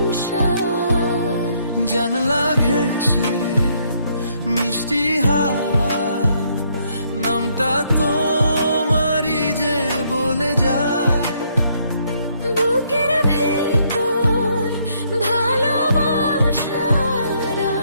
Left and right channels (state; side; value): inverted; both; correlation -0.70